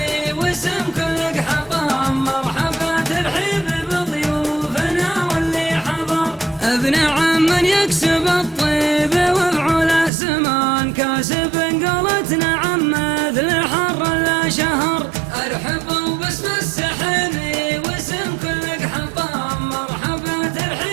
واسم كل حطام، مرحبا ترحيب بضيوفنا واللي حضر، ابن عم يكسب الطيب وفعل سمان، كاسب قولتنا عم مثل حر لا شهر. ارحبوا باسم السحيمي واسم كل حطام، مرحبا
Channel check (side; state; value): left; drops out; at 10.1 s